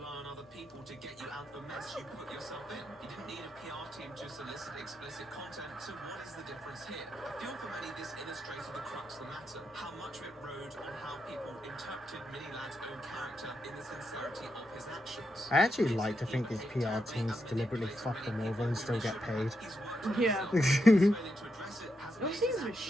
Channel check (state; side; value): normal; both; correlation 0.83